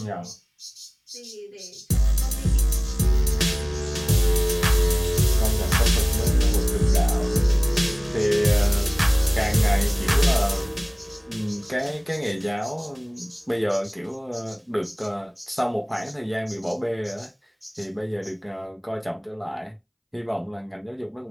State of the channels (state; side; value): identical; both; correlation 1.00